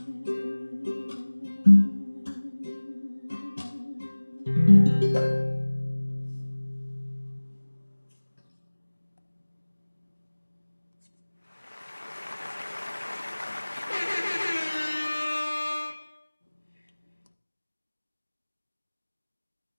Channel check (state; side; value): inverted; both; correlation -1.00